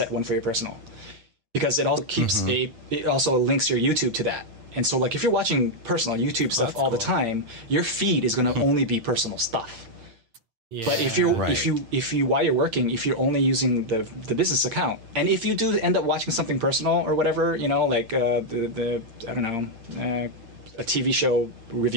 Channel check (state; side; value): late; left; 8.8 ms